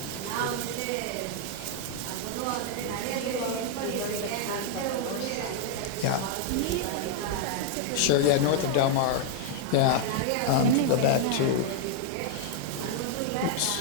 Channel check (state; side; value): different; both; correlation 0.00